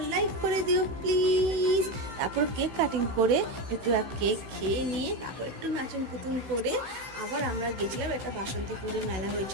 লাইক করে দিও প্লিজ। তারপর কেক কাটিং করে একটু কেক খেয়ে নিয়ে তারপর একটু নাচন কুতুন করে আবার আমরা গেছিলাম একটা বাসন্তী পুজো মেলা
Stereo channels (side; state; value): left; late; 16 ms